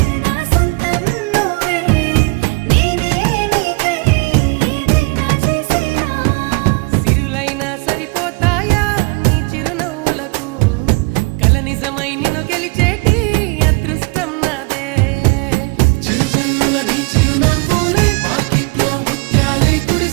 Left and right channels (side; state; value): left; quieter; 27.9 dB